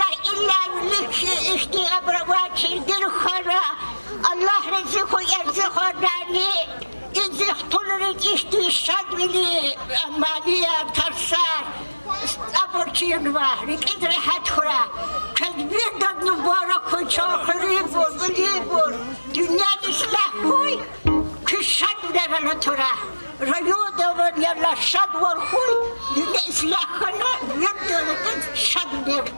illa likşi işti abravati dil khara Allah rizku erzikhanani izih tulurit işti şadvili amaliya tarsar aborçiyun var ikidre hatkura kedbir dad mübarek kuy çakhiri bur bilibur dünya islah kuy Kışat devlet tura, rayu devlet yalla şad var huy, dünya islahına bir devletin şad bir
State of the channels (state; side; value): inverted; both; correlation -1.00